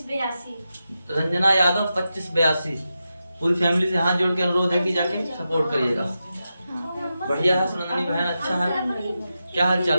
रंजना यादव 2582। पूरी फैमिली से हाथ जोड़ के अनुरोध है कि जाके सपोर्ट करिएगा। बढ़िया है सुनंदनी बहन, अच्छा है। क्या हाल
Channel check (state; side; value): inverted; both; correlation -0.90